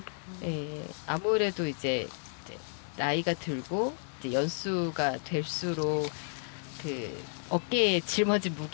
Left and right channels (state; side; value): silent; right; digital silence